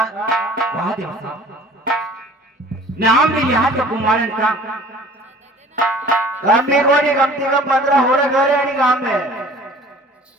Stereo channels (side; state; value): both; normal; correlation 0.48